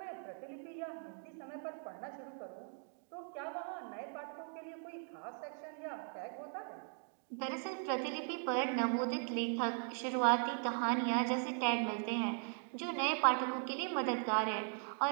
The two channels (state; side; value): silent; left; 52 dB below the other